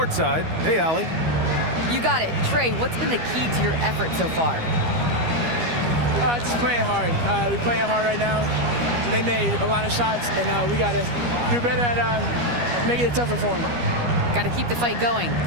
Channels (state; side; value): late; left; 12 ms